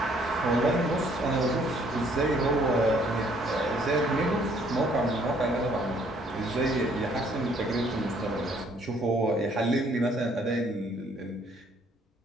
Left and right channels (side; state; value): both; normal; correlation 0.63